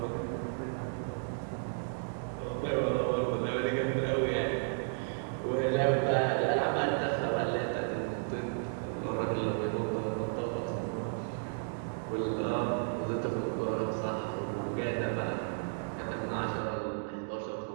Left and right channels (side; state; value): left; silent; digital silence